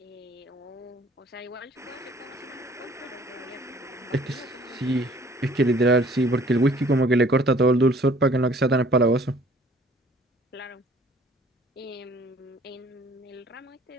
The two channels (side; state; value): both; normal; correlation 0.55